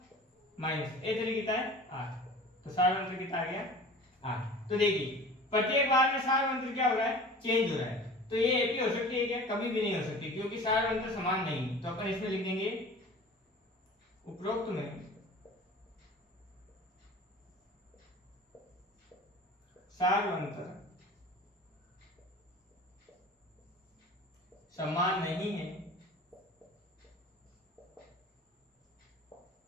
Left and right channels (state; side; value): normal; both; correlation 0.41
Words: माइनस a3 कितना है, 8। तो सार अंतर कितना आ गया, 8। तो देखिए प्रत्येक बार में सार अंतर क्या हो रहा है, चेंज हो रहा है। तो ये एपी हो सकती है क्या, कभी भी नहीं हो सकती क्योंकि सार अंतर समान नहीं है। तो अपन इसमें लिख देंगे उपरोक्त में सार अंतर समान नहीं है,